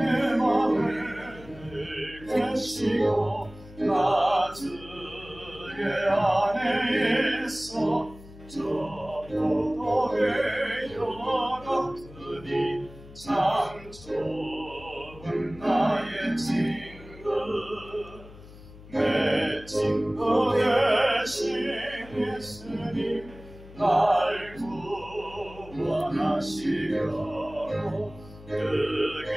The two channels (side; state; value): left; noise; hum, 19 dB below the sound